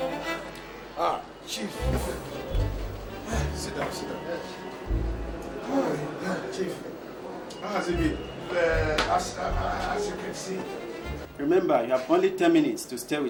Chief. Sit down. Chief. How has it been? As you can see. Remember, you have only 10 minutes to stay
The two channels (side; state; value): both; identical; correlation 1.00